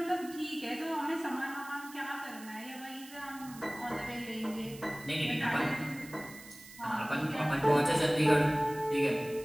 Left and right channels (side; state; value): right; noise; hiss, 18 dB below the sound